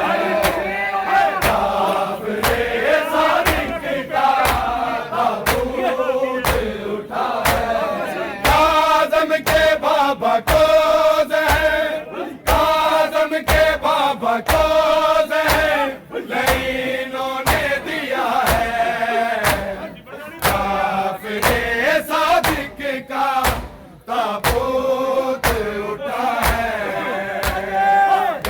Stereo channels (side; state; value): both; identical; correlation 1.00